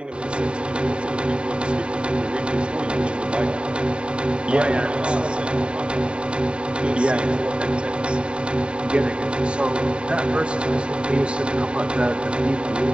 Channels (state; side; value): late; left; 0.052 ms